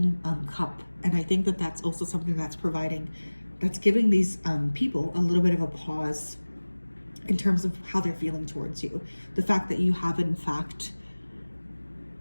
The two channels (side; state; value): both; inverted; correlation -1.00